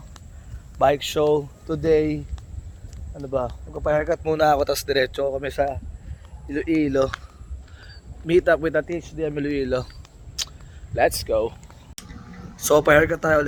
bike show. Today, magpapa-haircut muna ako, tapos diretso kami sa Iloilo. Meet up with the THDM Iloilo. Let's go. So, pa-haircut tayo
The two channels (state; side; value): identical; both; correlation 1.00